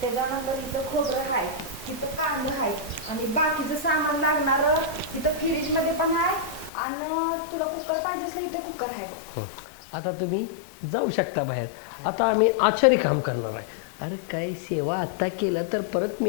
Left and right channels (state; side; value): drops out; right; at 6.7 s